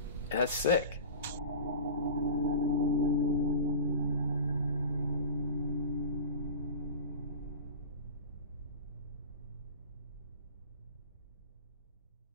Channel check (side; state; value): both; inverted; correlation -0.33